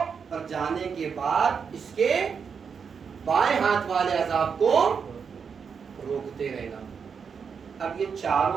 اور جانے کے بعد اس کے بائیں ہاتھ والے عذاب کو روکتے رہنا. اب یہ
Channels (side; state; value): left; quieter; 6.3 dB